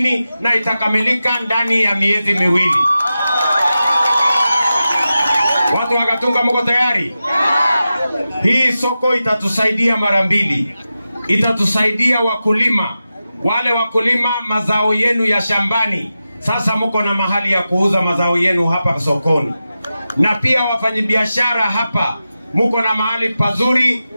na itakamilika ndani ya miezi miwili. Watu wa Gatunga mko tayari? Hii soko itatusaidia mara mbili. Itatusaidia wakulima, wale wakulima mazao yenu ya shambani. Sasa mko na mahali ya kuuza mazao yenu hapa sokoni. Na pia wafanyabiashara hapa mko na mahali pazuri.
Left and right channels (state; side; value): inverted; both; correlation -0.92